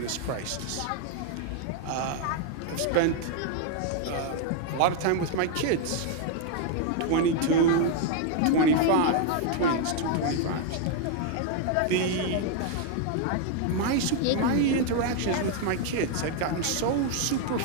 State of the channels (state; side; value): different; both; correlation 0.00